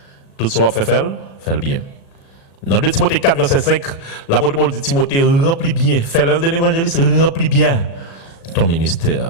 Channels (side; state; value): right; late; 36 ms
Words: Tout ce qu'on fait le bien. Dans 2 Timothée 4, verset 5, l'apôtre Paul dit Timothée, remplis bien, fais l'œuvre d'un évangéliste, remplis bien ton